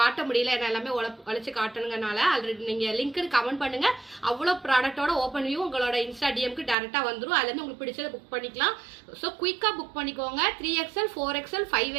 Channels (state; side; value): drops out; left; at 6.8 s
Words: முடியல, என்ன எல்லாமே உழைச்சி காட்டணுங்கனால. ஆல்ரெடி நீங்கள் லிங்க்கு கமெண்ட் பண்ணுங்கள். அவ்வளோ ப்ராடக்டோட ஓப்பன் வியூ உங்களோட இன்ஸ்டா டிஎம்க்கு டேரெக்டாக வந்துடும். அதுலேருந்து உங்களுக்கு பிடிச்சதை புக் பண்ணிக்கலாம். ஸோ குயிக்காக புக் பண்ணிக்கோங்க. 3XL 4XL